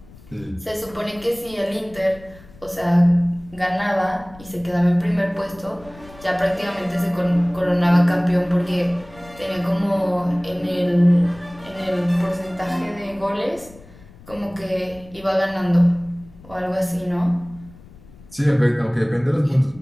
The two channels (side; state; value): left; noise; rumble, 22 dB below the sound